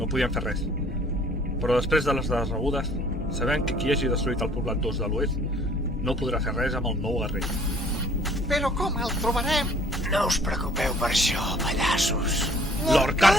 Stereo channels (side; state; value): both; normal; correlation 0.56